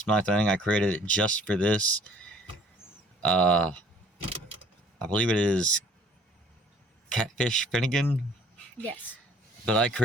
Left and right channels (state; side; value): normal; both; correlation 0.56